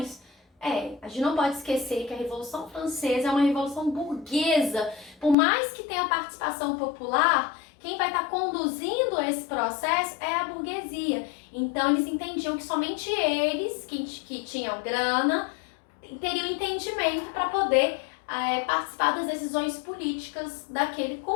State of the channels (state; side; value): drops out; right; at 5.4 s